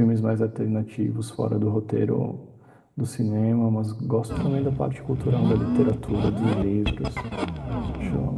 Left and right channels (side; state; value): both; identical; correlation 1.00